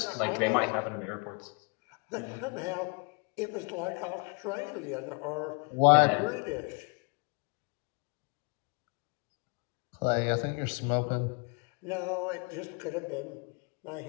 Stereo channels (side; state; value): right; quieter; 34.2 dB